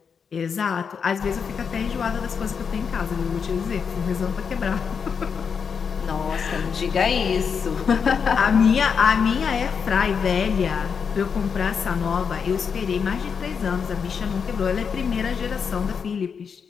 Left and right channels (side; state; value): right; quieter; 6.4 dB